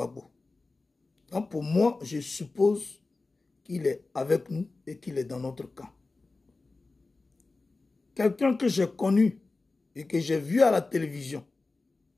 Donc, pour moi, je suppose qu'il est avec nous et qu'il est dans notre camp. Quelqu'un que j'ai connu et que j'ai vu à la télévision,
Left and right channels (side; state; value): right; quieter; 3.5 dB